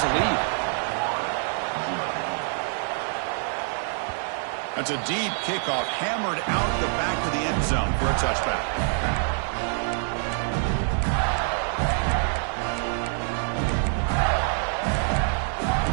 a lead. That's a deep kickoff, hammered out the back of the end zone for a touchback.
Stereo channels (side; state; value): left; silent; 58 dB below the other